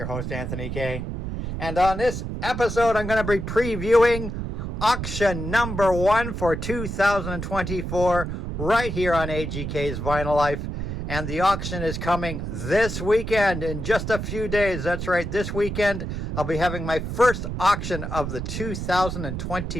host, Anthony K. And on this episode, I'm going to be previewing auction number 1 for 2024 right here on AGK's Vinyl Life. And the auction is coming this weekend in just a few days. That's right, this weekend I'll be having my first auction of the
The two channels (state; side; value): noise; right; rumble, 5 dB below the sound